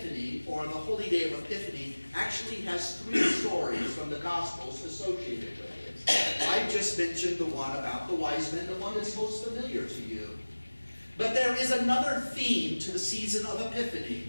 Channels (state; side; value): inverted; both; correlation -1.00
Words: or the holy day of Epiphany, actually has 3 stories from the Gospels associated with it. I just mentioned the one about the wise men, the one that's most familiar to you. But there is another theme to the season of Epiphany,